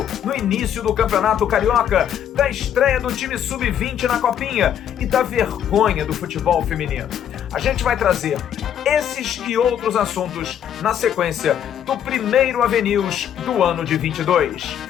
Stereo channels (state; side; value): quieter; right; 9.6 dB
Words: no início do Campeonato Carioca, da estreia do time Sub-20 na Copinha e da vergonha do futebol feminino. A gente vai trazer esses e outros assuntos na sequência do primeiro AVNews do ano de 22.